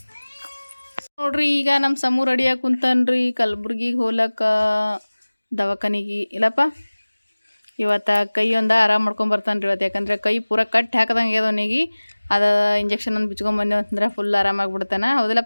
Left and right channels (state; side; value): inverted; both; correlation -1.00